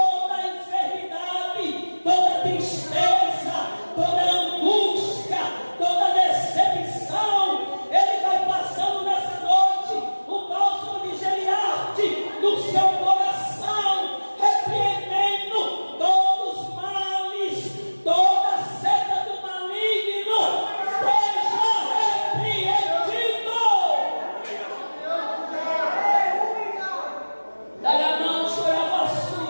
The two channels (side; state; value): both; inverted; correlation -1.00